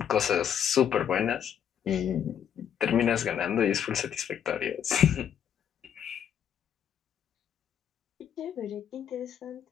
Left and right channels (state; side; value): quieter; right; 8.8 dB